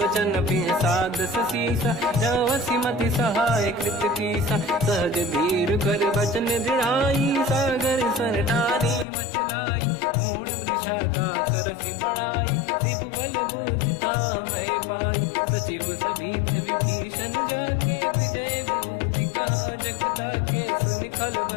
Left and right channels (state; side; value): drops out; right; at 9.1 s